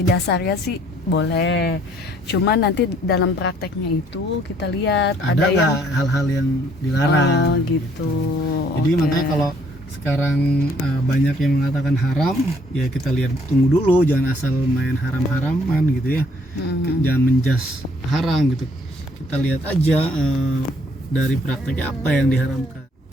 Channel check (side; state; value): both; normal; correlation 0.64